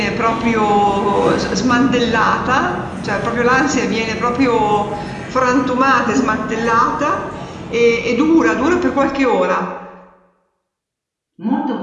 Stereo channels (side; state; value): both; identical; correlation 1.00